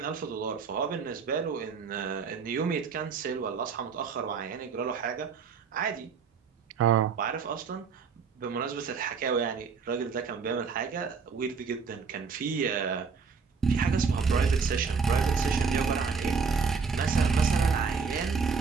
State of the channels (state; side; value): quieter; left; 5.4 dB